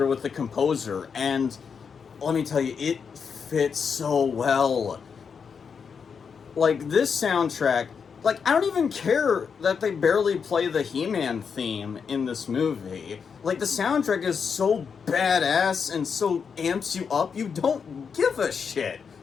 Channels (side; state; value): right; quieter; 6.2 dB